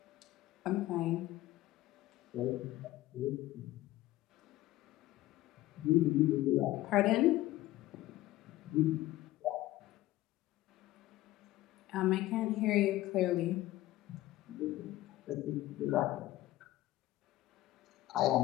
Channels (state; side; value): quieter; right; 16.2 dB